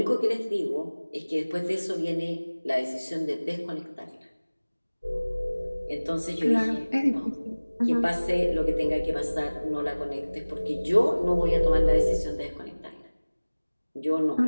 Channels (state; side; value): inverted; both; correlation -1.00